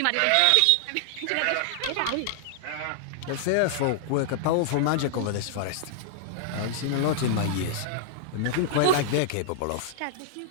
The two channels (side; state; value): both; different; correlation -0.01